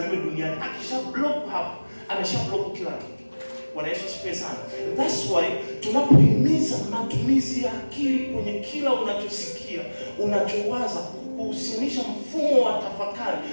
duniani, akisha block hapo, amesha block kila kitu. Bwana Yesu asifiwe sana. That's why tunapohimiza matumizi ya akili kwenye kila unachosikia, unachowaza, kuhusianisha mfumo wa tafakari,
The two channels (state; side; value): inverted; both; correlation -1.00